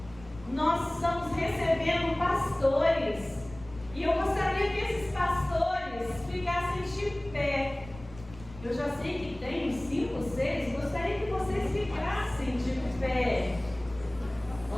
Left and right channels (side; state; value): left; noise; rumble, 18 dB below the sound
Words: nós estamos recebendo pastores. E eu gostaria que esses pastores ficassem de pé. Eu já sei que tem uns 5, 6, gostaria que vocês ficassem de pé.